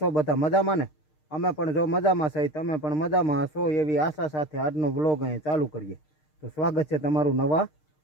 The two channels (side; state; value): right; late; 6.5 ms